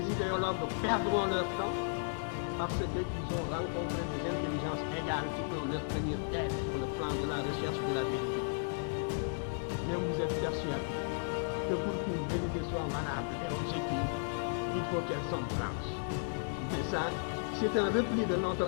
idéologues perdront leur temps parce qu'ils ont rencontré des intelligences égales qui peuvent leur tenir tête sur le plan de la recherche de la vérité. Mais vous êtes persuadé que pour qu'une vérité soit valable et objective, il faut qu'elle soit blanche. Et ça, c'est un repli de notre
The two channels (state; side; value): silent; right; digital silence